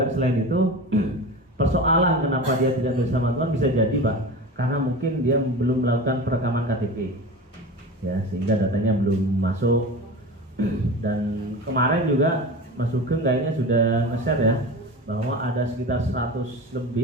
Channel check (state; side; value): normal; both; correlation 0.30